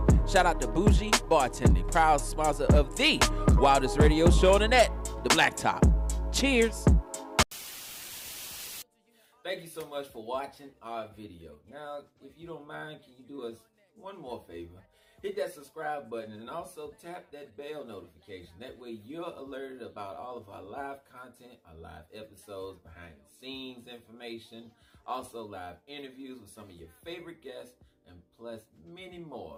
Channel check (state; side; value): identical; both; correlation 1.00